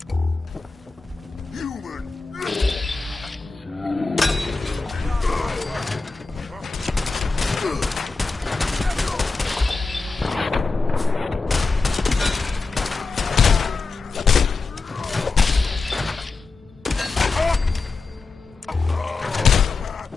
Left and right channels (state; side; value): quieter; right; 4.0 dB